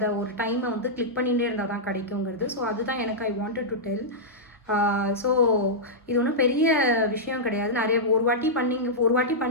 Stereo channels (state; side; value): normal; both; correlation -0.10